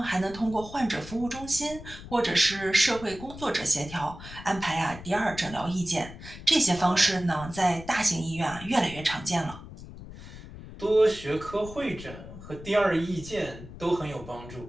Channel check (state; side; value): noise; left; rumble, 14 dB below the sound